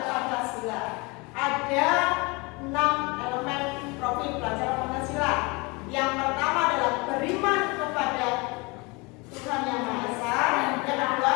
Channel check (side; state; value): right; quieter; 26.8 dB